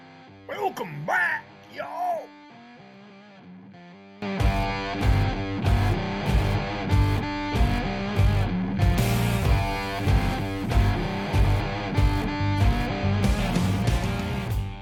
Welcome back, y'all.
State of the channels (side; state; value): both; identical; correlation 1.00